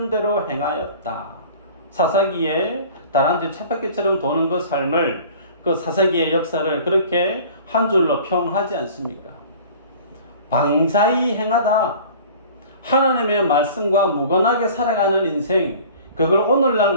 행하였다. 사사기에 다람쥐 쳇바퀴처럼 도는 그 삶을, 그 사사기의 역사를 그렇게 한 줄로 평하지 않습니까? 방자히 행하다. 하나님의 말씀과 무관하게 살아가는 인생, 그걸 오늘날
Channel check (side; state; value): both; inverted; correlation -0.45